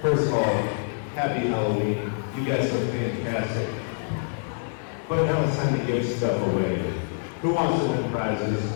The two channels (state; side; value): silent; right; 61 dB below the other